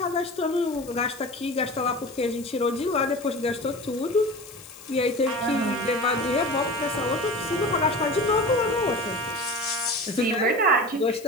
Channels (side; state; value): left; noise; hiss, 20 dB below the sound